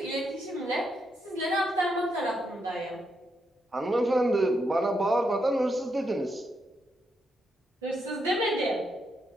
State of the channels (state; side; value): normal; both; correlation 0.80